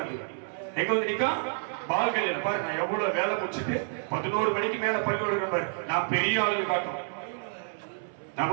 எங்க வந்து நிக்கும்? பால்கள். பாரு, நான் எவ்வளவு வேலை முடிச்சுட்டு 11 மணிக்கு மேல பள்ளியோட பாரு, நான் பெரிய ஆளுங்க காட்டும்.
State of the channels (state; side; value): silent; left; 59 dB below the other